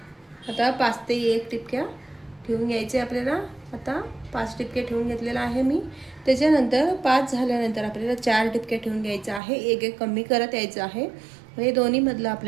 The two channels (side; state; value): left; drops out; at 9.4 s